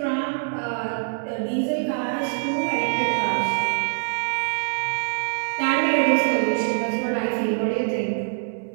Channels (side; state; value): left; silent; digital silence